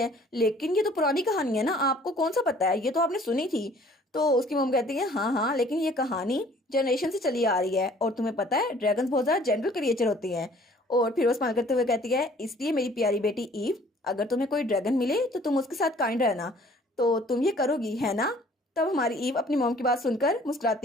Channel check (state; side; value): normal; both; correlation 0.55